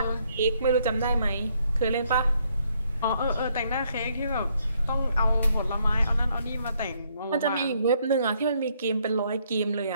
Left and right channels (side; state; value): both; inverted; correlation -0.71